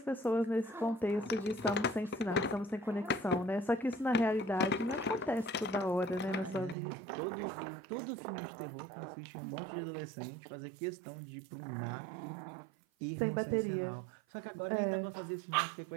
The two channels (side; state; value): left; drops out; at 6.8 s